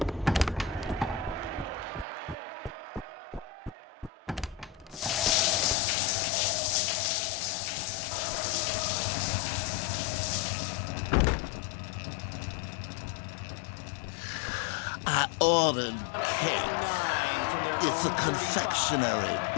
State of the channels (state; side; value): drops out; right; at 5.8 s